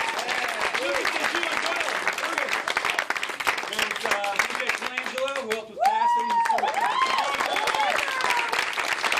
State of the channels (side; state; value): both; identical; correlation 1.00